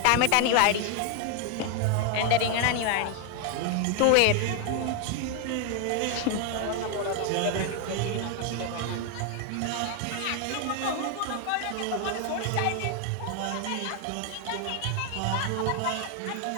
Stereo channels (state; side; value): different; both; correlation 0.01